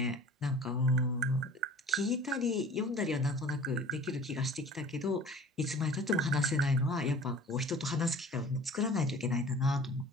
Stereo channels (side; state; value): both; normal; correlation 0.44